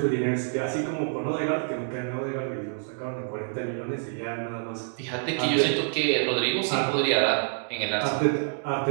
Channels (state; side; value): silent; left; 60 dB below the other